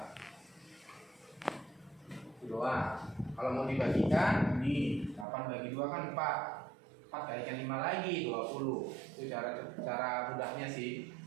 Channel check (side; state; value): left; drops out; at 5.2 s